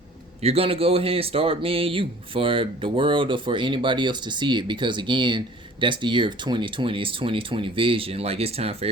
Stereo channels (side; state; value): both; normal; correlation 0.50